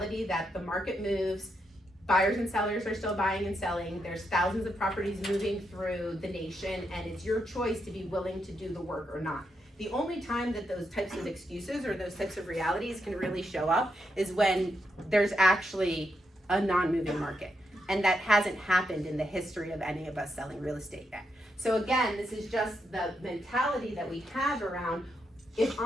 that the market moves, buyers and sellers are still buying and selling, there's thousands of properties moving through the nation, and it's your choice to be willing to do the work or not. The only time that those types of excuses or those types of realities can really show up is when there's actually a non-moving market. And that hasn't happened in the history of any of us selling real estate yet. So again, this is just the mentality that we have around, if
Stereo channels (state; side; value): normal; both; correlation 0.82